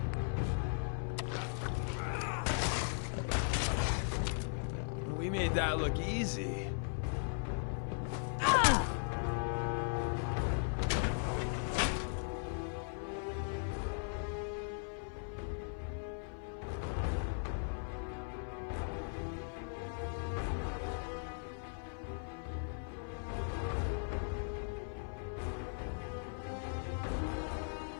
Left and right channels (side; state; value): right; silent; 52 dB below the other